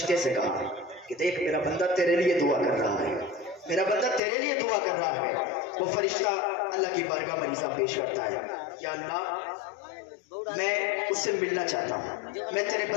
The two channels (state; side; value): drops out; right; at 4.2 s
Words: سے کہا کہ دیکھ میرا بندہ تیرے لیے دعا کر رہا ہے، میرا بندہ تیرے لیے دعا کر رہا ہے۔ وہ فرشتہ اللہ کی بارگاہ میں عریضہ پیش کرتا ہے، یا اللہ میں اس سے ملنا چاہتا ہوں، میں تیرے